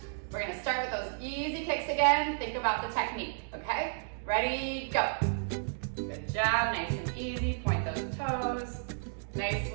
We're gonna start with those easy kicks again. Think about the technique, okay? Ready, go. Good job, nice and easy. Point those toes. Nice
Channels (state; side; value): silent; left; digital silence